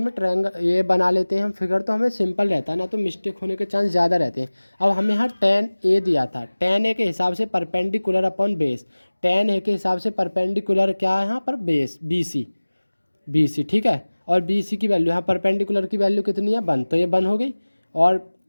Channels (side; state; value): both; inverted; correlation -1.00